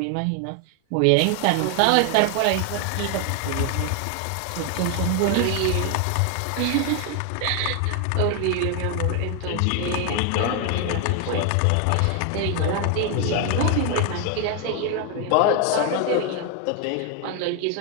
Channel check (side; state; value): both; different; correlation 0.01